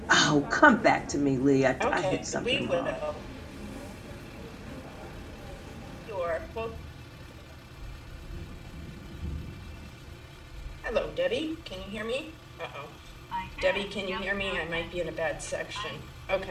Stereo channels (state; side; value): identical; both; correlation 1.00